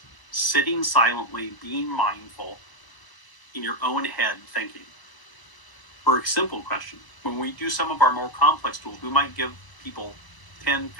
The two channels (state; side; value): late; right; 1.0 ms